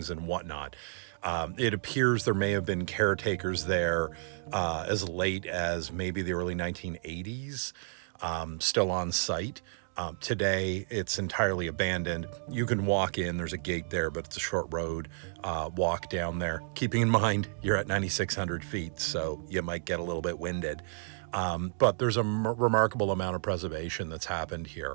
and whatnot. It appears there may have been caretakers there as late as maybe the early 1980s, still on site. Today, it's entirely abandoned. You can walk in, there's a gate there, but it's a short road, walk down there. Keeping in mind, you're at 9,600 feet, so you might get a little bit winded. But there's a remarkable amount of preservation that's happened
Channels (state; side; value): silent; left; digital silence